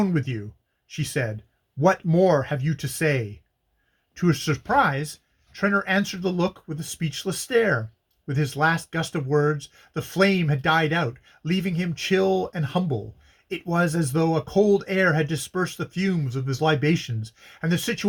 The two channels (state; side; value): identical; both; correlation 1.00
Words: with you, she said. What more have you to say? To her surprise, Trenor answered the look with a speechless stare. With his last gust of words, the flame had died out, leaving him chill and humble. It was as though a cold air had dispersed the fumes of his libations, and the